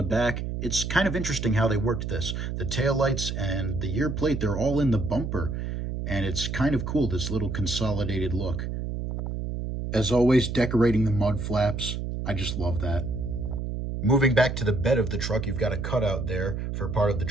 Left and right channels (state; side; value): noise; right; hum, 4 dB below the sound